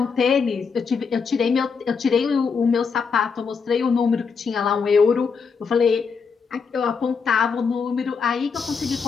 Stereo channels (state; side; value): quieter; right; 5.6 dB